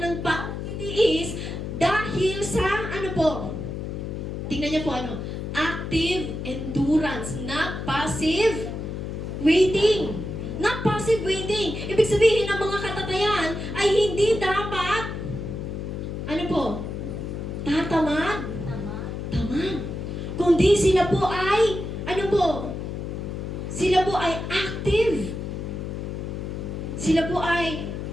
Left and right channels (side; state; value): left; noise; hum, 5 dB below the sound